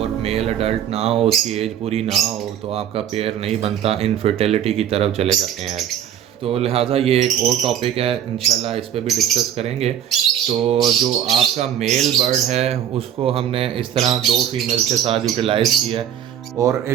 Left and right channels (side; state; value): left; quieter; 9.8 dB